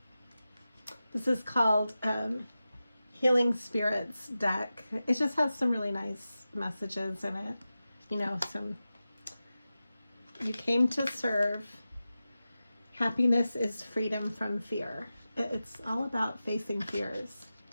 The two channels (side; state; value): both; inverted; correlation -0.93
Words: This is called Healing Spirits deck. It just has some really nice messages in it. You know, you came to serve. Happiness is freedom from fear. It's all about facing fears.